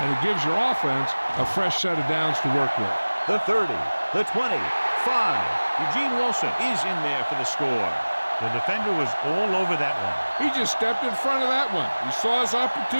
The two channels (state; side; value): inverted; both; correlation -1.00